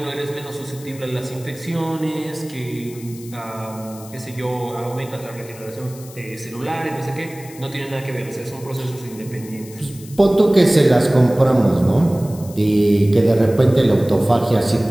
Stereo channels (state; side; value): noise; left; hiss, 19 dB below the sound